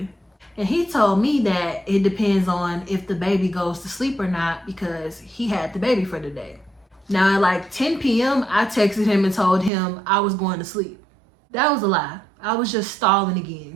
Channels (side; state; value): left; drops out; at 9.7 s